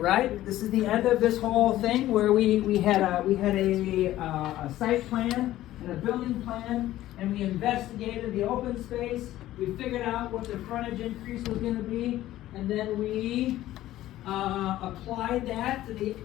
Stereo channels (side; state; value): right; quieter; 14.5 dB